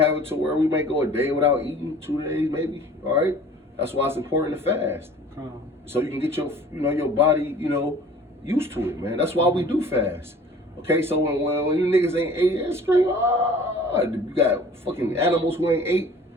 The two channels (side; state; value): both; normal; correlation 0.48